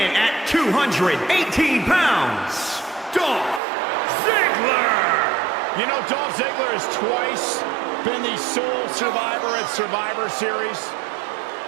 at 218 pounds, Dolph Ziggler. You know, Dolph Ziggler has twice been the sole survivor at Survivor Series.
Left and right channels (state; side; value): drops out; left; at 3.6 s